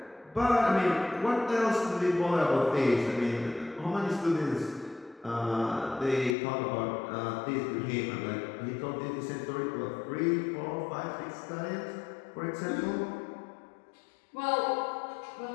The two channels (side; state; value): right; drops out; at 6.4 s